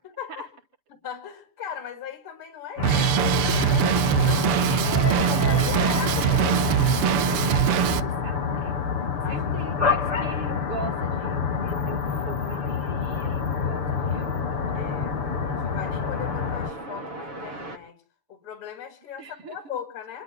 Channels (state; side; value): late; left; 7.0 ms